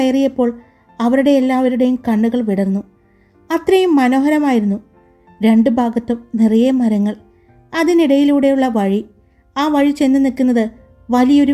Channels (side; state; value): both; identical; correlation 1.00